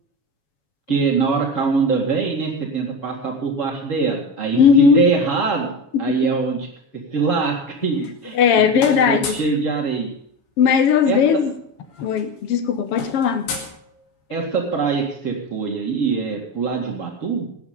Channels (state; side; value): late; right; 7.2 ms